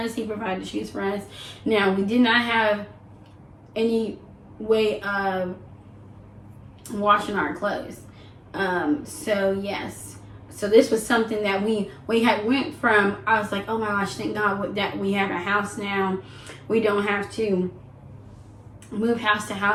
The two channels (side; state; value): both; identical; correlation 1.00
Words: He provided shoes for us. Now, we did not have any way of washing our clothes. So yes. So this was something that we had went from. I was like, oh my gosh, thank God that we have a house now. We don't have to move house to